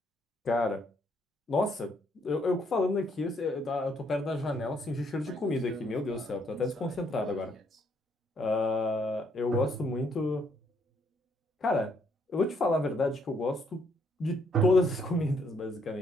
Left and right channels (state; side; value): normal; both; correlation 0.70